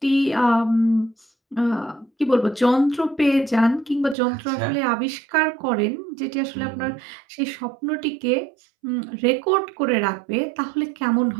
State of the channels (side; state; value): left; drops out; at 4.2 s